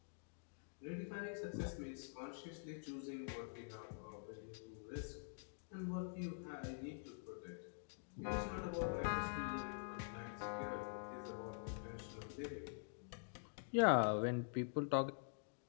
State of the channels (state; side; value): silent; right; digital silence